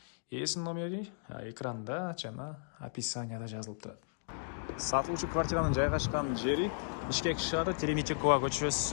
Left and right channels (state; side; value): silent; right; digital silence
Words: Эсин номери экранда жана описанияда жазылып турат. Сатылуучу квартиранын жайгашкан жери Бишкек шаары Тереметикова